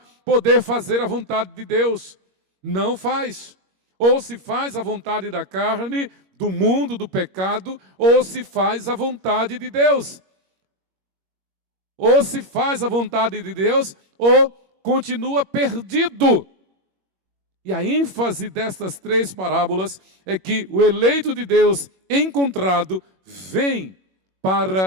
poder fazer a vontade de Deus. Não faz. Ou se faz a vontade da carne, do mundo, do pecado, ou se faz a vontade de Deus. Ou se faz a vontade de Deus, ou continua perdido. E a ênfase destas três parábolas é que o eleito de Deus encontrado vem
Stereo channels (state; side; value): late; left; 21 ms